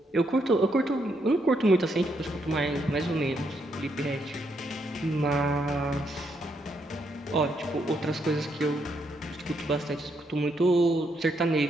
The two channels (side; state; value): both; normal; correlation 0.76